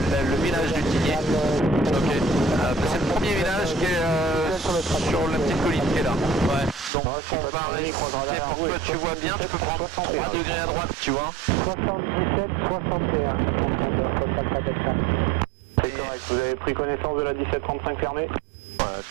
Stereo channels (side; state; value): left; drops out; at 6.9 s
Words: village du Tigné. Ok. C'est le premier village qui est sur la petite colline qui est là. Ouais. Donc on va rester pour que tu vois bien, tu peux prendre 3 degrés à droite, tu vois. 77, 61. C'est correct, vous avez pris connaissance de la 1735 fermée? Ouais,